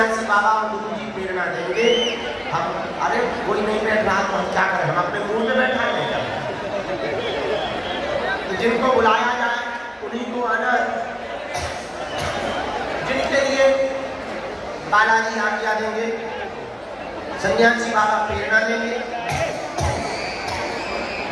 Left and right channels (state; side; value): identical; both; correlation 1.00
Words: बाबा और गुरु जी प्रेरणा देंगे, हम अरे कोई नहीं बैठ रहा तो हम क्या करें, हम अपने मुंह में बैठा नहीं। तो जिनको बुलाया जाए उन्हीं को आना है। जिनके लिए बालाजी आज्ञा देंगे, सन्यासी बाबा प्रेरणा देंगे,